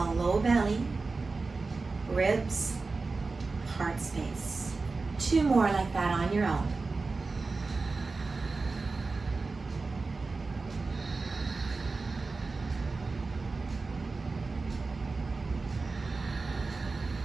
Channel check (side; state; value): left; quieter; 3.9 dB